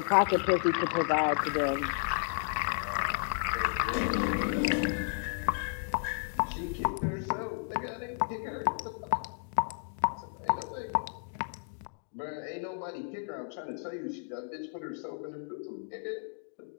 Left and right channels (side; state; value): right; silent; digital silence